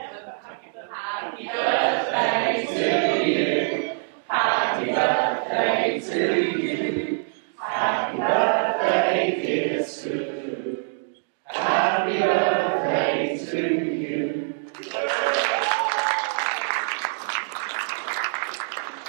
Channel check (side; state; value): left; silent; digital silence